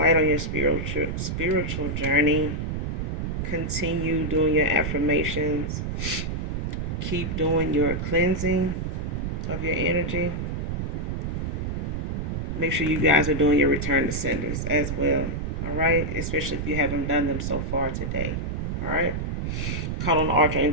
on your spiritual journey. Continue doing your affirmations. Keep doing your cleansing of your energy. Make sure you guys are doing your return to senders as well. All right. Especially if you haven't done them so far today. All right. Call on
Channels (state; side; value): noise; right; rumble, 2 dB below the sound